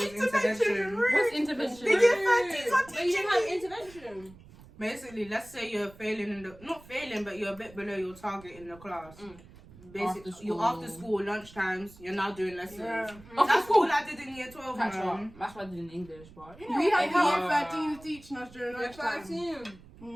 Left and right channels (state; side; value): noise; right; rumble, 21 dB below the sound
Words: intervention. What's intervention? Year 13's not But you teaching have me. intervention. Basically, let's say you're failing in the, not failing, but you're a bit below your target in the class. Basically, After you're school. after school, lunch times, you're now doing lessons. Yeah. That's all I did in year 12, That's man. right. That's what I did in English, but you know, We had every year 13 teaching us during year lunchtime.